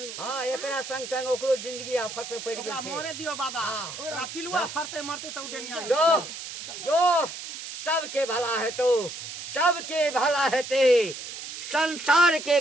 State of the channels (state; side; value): noise; right; hiss, 9 dB below the sound